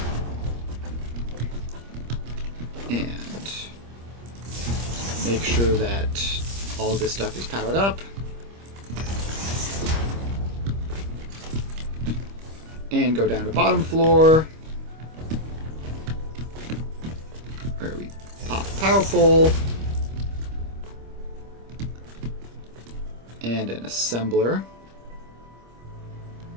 And make sure that all this stuff is powered up. And go down to bottom floor, where we pop a power pole and an assembler.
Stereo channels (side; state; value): left; late; 25 ms